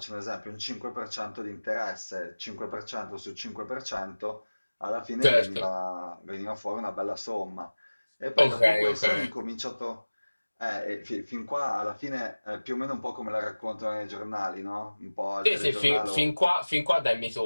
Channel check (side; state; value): both; inverted; correlation -1.00